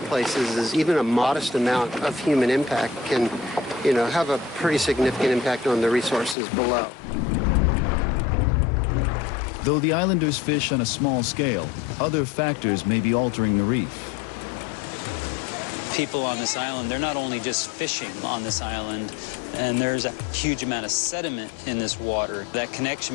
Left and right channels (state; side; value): drops out; right; at 6.4 s